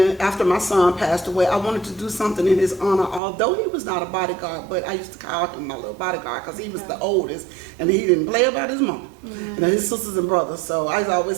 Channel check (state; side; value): drops out; left; at 3.2 s